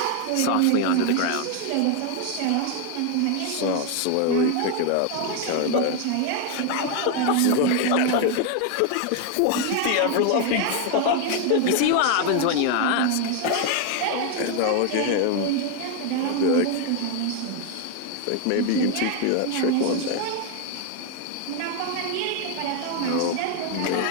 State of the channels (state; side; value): different; both; correlation 0.01